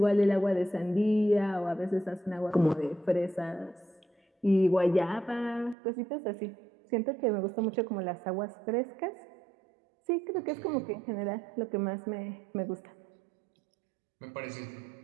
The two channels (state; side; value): drops out; left; at 5.8 s